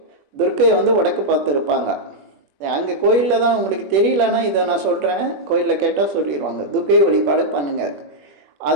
துர்க்கை வந்து வடக்கு பார்த்து இருப்பாங்க. அங்கே கோயிலில் தான் உங்களுக்கு தெரியலன்னா இதை நான் சொல்கிறேன், கோயிலில் கேட்டால் சொல்லிடுவாங்க. துர்க்கை வழிபாடு பண்ணுங்கள்.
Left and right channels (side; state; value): left; late; 21 ms